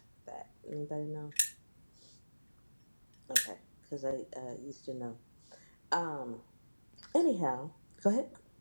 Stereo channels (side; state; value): both; inverted; correlation -1.00